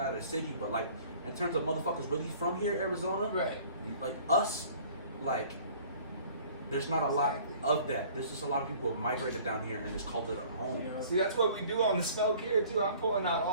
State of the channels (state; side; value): inverted; both; correlation -0.51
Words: out of the city. But like, in terms of motherfuckers really from here, Arizona, right? Like us, like. There's not a lot of that. There's just a lot of people who have migrated down here and just called it a home. Yeah. See, that's what we do on the Smoke here too. I'm pulling out